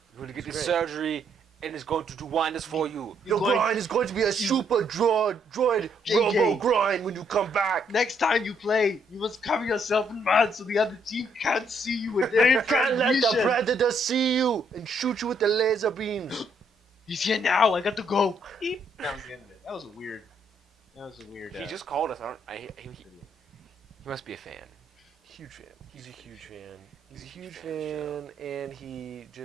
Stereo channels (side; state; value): both; normal; correlation 0.71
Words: You're going to get It's this great. surgery, and it's going to do wonders for you. Your groin is going to be a super droid robo groin when you come back. Next time you play, you must cover yourself in mud so the other team can't see you with their You can't let the transmission. predator see you and shoot you with the laser beams. He's here now. I got to go. Beep. That was the end of it. That was a weird. He just called us. He must be a fan. Huge fan. He's a huge fan. He's a huge fan, and he